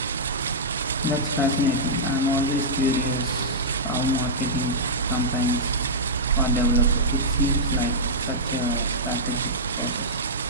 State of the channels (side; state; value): both; normal; correlation -0.11